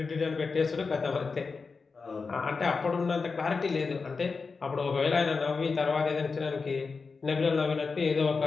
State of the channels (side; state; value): right; quieter; 4.6 dB